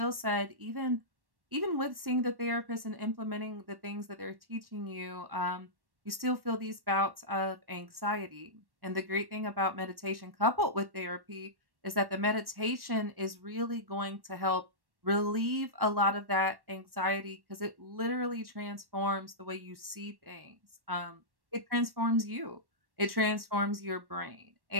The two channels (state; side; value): late; left; 1.1 ms